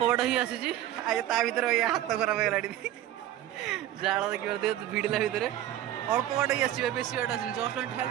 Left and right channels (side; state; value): left; quieter; 12.9 dB